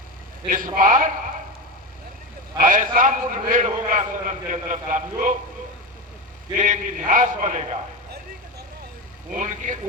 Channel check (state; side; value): normal; both; correlation 0.19